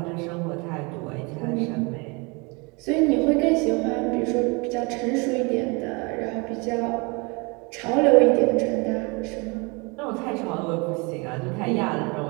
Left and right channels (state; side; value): quieter; left; 29.1 dB